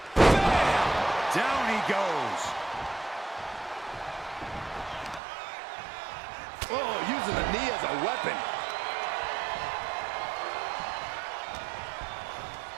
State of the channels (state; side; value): drops out; left; at 5.2 s